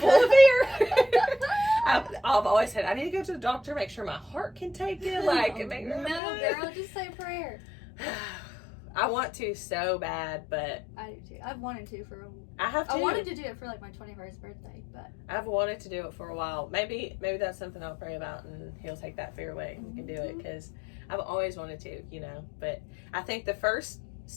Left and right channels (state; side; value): drops out; right; at 6.2 s